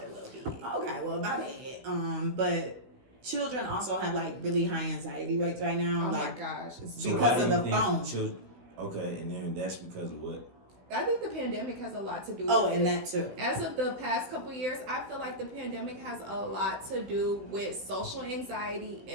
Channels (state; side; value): late; left; 16 ms